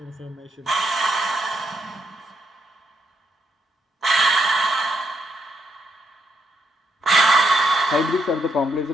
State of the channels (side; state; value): both; normal; correlation 0.78